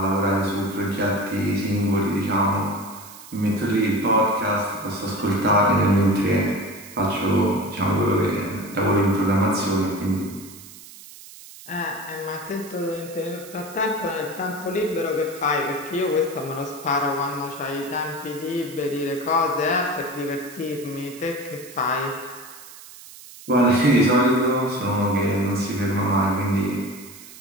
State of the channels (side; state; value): right; noise; hiss, 18 dB below the sound